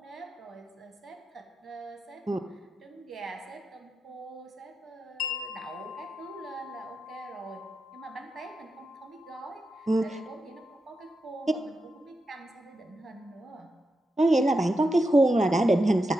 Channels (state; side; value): normal; both; correlation 0.87